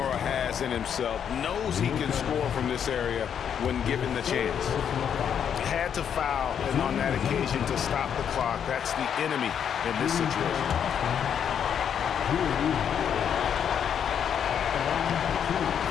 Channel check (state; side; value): quieter; right; 8.3 dB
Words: has in himself, knows he can score from this area when given the chance. Had to foul, and on that occasion to stop the clock. That's the enemy in this situation.